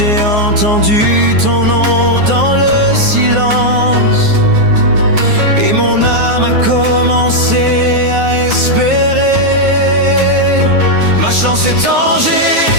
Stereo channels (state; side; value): late; left; 9.5 ms